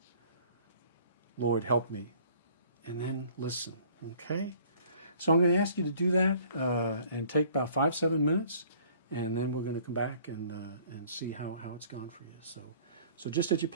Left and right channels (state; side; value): inverted; both; correlation -0.55